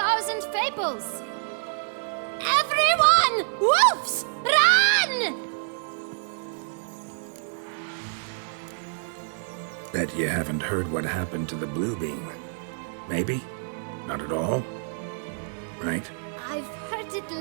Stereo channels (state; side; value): silent; left; digital silence